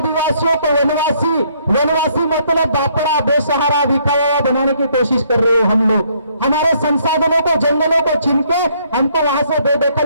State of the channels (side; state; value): both; inverted; correlation -0.67